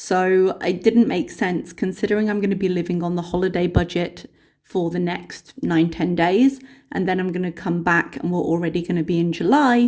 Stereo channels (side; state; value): both; identical; correlation 1.00